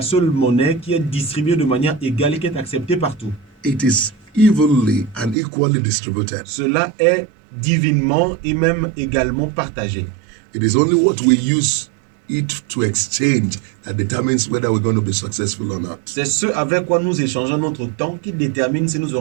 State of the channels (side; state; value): left; drops out; at 5.4 s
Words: seule monnaie qui est distribuée de manière égale et qui est acceptée partout. It is evenly and equally distributed. Cela est divinement et même également partagé. It is only what we use it to exchange that determines whether we're going to be successful or not. C'est ce avec quoi nous échangeons notre temps qui détermine si nous